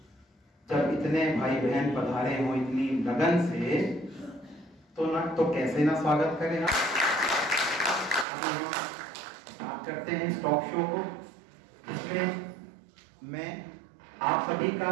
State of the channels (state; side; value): drops out; left; at 8.2 s